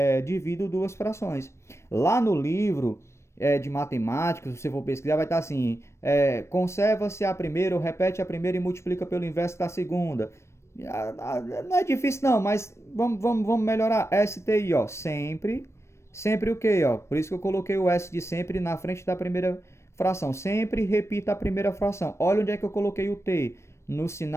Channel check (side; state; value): right; late; 0.13 ms